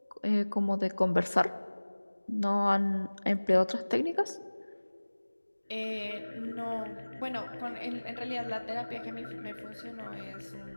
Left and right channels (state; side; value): inverted; both; correlation -1.00